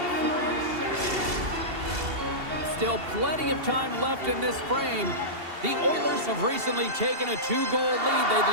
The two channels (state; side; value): late; left; 2.7 ms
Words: Still plenty of time left in this frame. The Oilers have recently taken a 2-goal lead. They'd